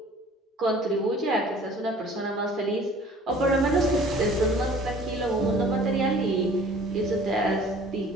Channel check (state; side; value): normal; both; correlation 0.50